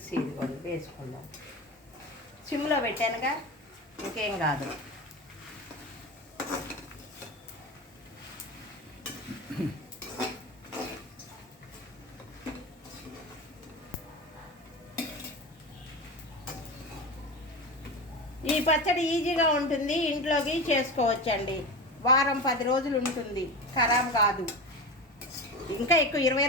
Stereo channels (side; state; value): both; normal; correlation 0.25